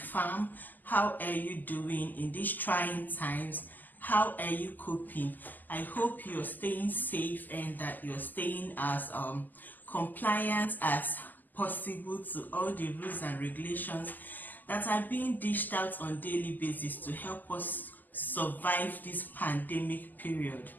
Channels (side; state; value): right; late; 0.085 ms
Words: How are you doing in these trying times? How are you coping? I hope you're staying safe and that you're staying as compliant as possible to all the rules and regulations that are being dished out on a daily basis to help us survive this pandemic period.